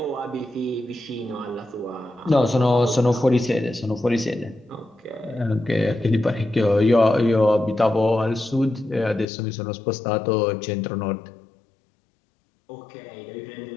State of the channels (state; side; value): drops out; right; at 9.2 s